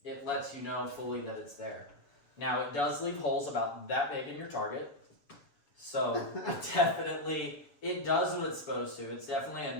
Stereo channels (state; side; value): late; right; 7.1 ms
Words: it lets you know fully that it's there. Now, it does leave holes about that big in your target, so it does what it's supposed to. It's definitely a